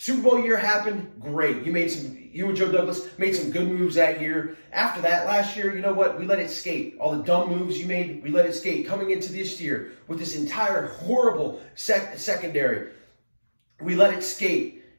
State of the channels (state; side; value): inverted; both; correlation -1.00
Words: Bowl year happened, great. You and Joe Douglas made some good moves that year. After that, last year, you know what? We let it skate. All the dumb moves you made, we let it skate. Coming into this year with this entire horrible secondary, we let it skate.